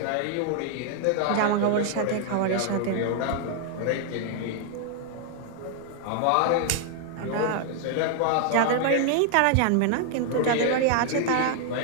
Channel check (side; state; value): both; different; correlation 0.00